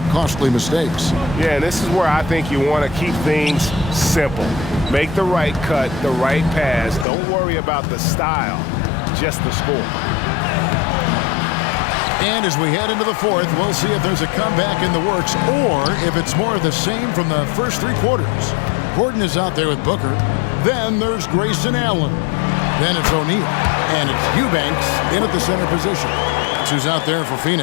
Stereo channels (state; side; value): drops out; right; at 7.1 s